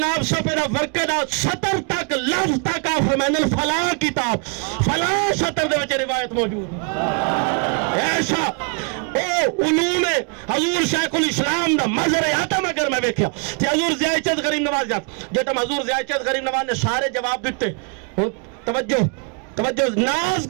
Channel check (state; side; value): quieter; left; 36.3 dB